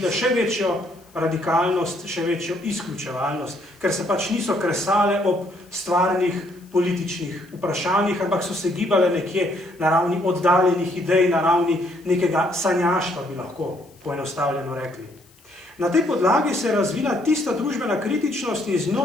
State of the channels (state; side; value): noise; left; hiss, 29 dB below the sound